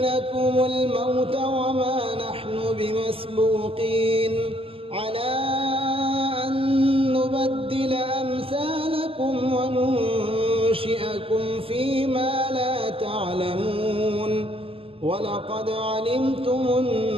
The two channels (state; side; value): late; left; 0.27 ms